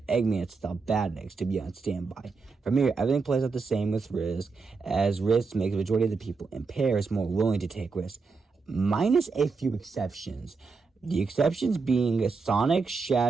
Eggman to stop Badniks to be on standby. From here, everything plays out the same with risk, as risk makes the majority of the people in Paris more willing to take risks, minus a few exceptions. The exceptions being Sonic,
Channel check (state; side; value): quieter; left; 4.6 dB